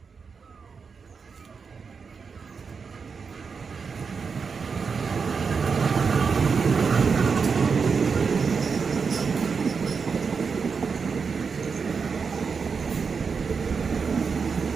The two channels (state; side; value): quieter; left; 5.5 dB